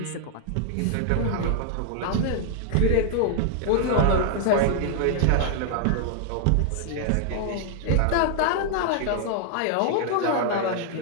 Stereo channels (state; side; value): different; both; correlation 0.00